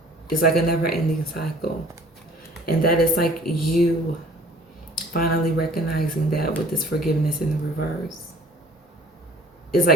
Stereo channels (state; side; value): normal; both; correlation 0.52